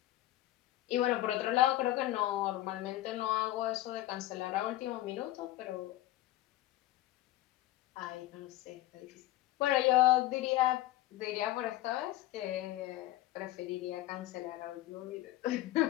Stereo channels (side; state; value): right; quieter; 15.5 dB